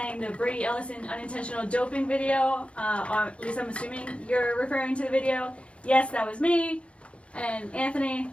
the Brady Ellison unintentional doping video. Or at least I'm assuming you're referring to the video. Yes, that was me. And Anthony,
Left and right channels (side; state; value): right; late; 0.061 ms